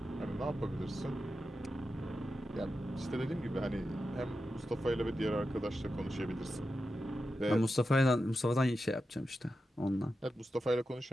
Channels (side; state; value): both; normal; correlation 0.90